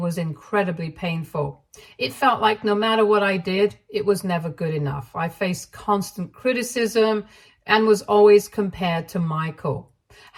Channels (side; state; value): both; identical; correlation 1.00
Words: incredibly painful. It felt like no matter what I did, it was never good enough. I faced constant criticism and was always compared to Michael.